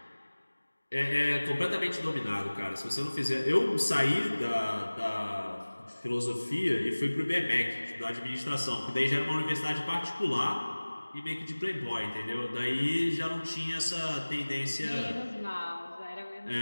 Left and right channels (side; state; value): both; inverted; correlation -1.00